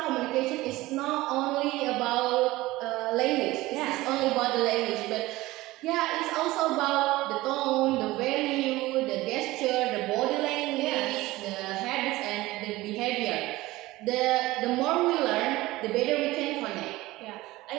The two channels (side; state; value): left; quieter; 18.6 dB